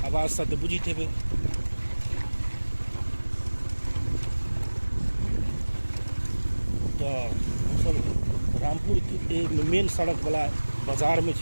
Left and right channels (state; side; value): inverted; both; correlation -1.00